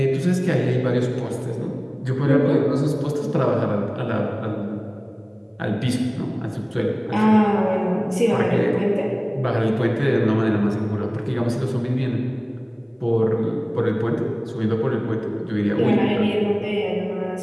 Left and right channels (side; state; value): both; identical; correlation 1.00